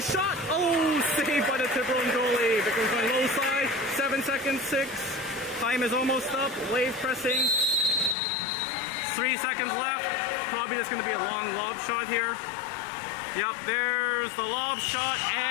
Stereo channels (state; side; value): drops out; right; at 8.2 s